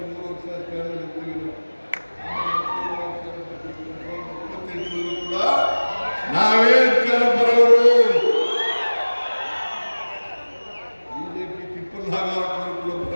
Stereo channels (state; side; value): inverted; both; correlation -1.00